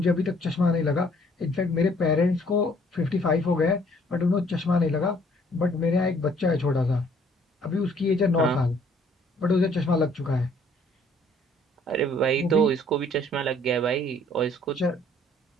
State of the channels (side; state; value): both; normal; correlation 0.61